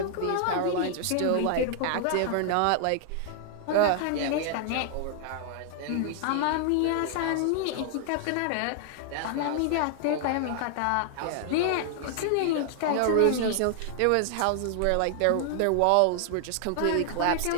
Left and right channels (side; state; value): both; different; correlation 0.00